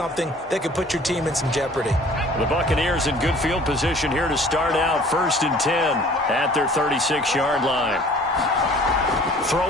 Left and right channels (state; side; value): normal; both; correlation 0.51